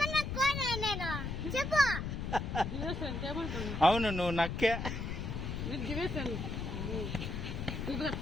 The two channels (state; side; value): noise; left; rumble, 4 dB below the sound